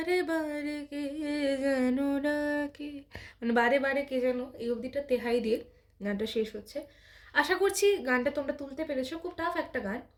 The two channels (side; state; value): both; identical; correlation 1.00